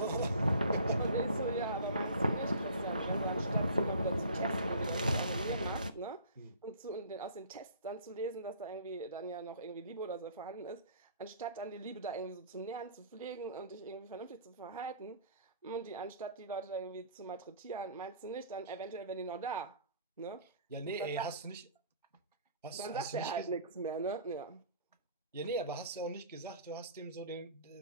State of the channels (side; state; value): both; inverted; correlation -0.49